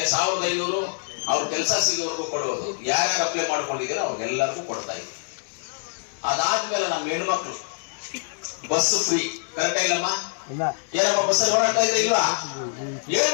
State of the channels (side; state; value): right; silent; digital silence